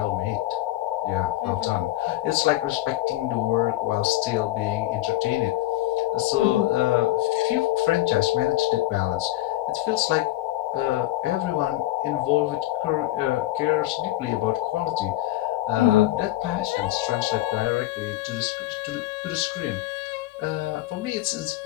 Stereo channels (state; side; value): quieter; right; 16.2 dB